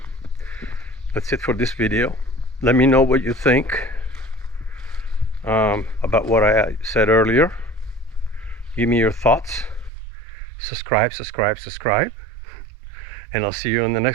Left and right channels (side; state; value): left; drops out; at 9.9 s